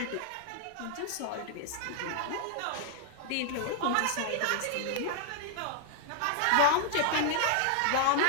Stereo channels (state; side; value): different; both; correlation -0.01